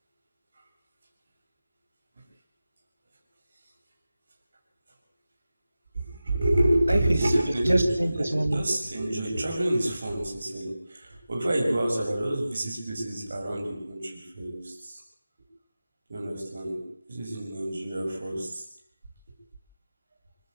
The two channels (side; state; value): both; inverted; correlation -0.94